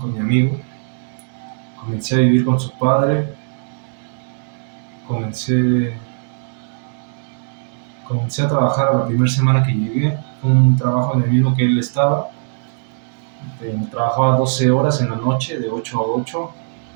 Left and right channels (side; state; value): left; silent; digital silence